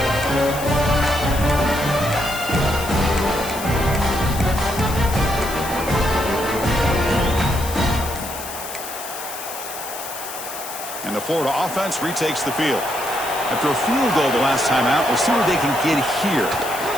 And the Florida offense retakes the field. After a field goal the last time out, we'll see what they can get here.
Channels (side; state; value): left; noise; hiss, 10 dB below the sound